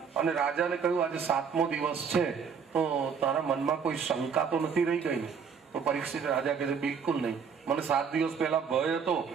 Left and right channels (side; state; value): left; quieter; 6.4 dB